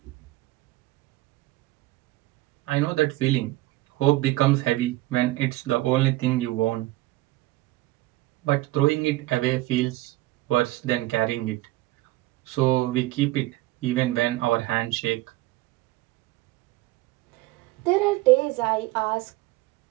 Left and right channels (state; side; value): quieter; left; 18.1 dB